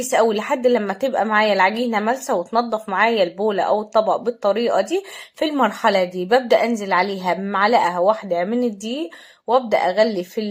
قوي لحد لما تبقى معايا العجينة ملسة وتنضف معايا البولة او الطبق بالطريقة دي. في المرحلة دي ببدأ انزل عليها بمعلقة واحدة من الدقيق، وابدأ اغلي في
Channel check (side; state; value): both; identical; correlation 1.00